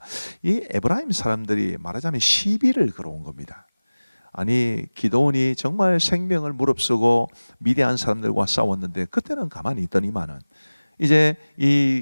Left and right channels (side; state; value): both; inverted; correlation -1.00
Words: 이 에브라임 사람들이 말하자면 시비를 걸어온 겁니다. 아니 기드온이 정말 생명을 무릅쓰고 미디안 사람들과 싸웠는데 그때는 가만히 있더니만은 이제